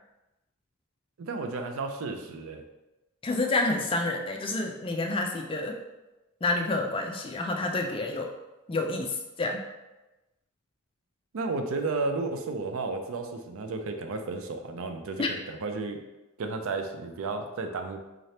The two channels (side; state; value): both; normal; correlation 0.05